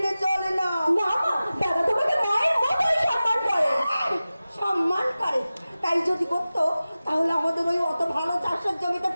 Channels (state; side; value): inverted; both; correlation -0.96